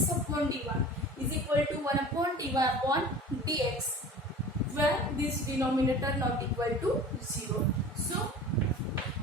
upon dy is equal to 1 upon dy upon dx, where this denominator not equal to 0. So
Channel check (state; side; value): normal; both; correlation 0.40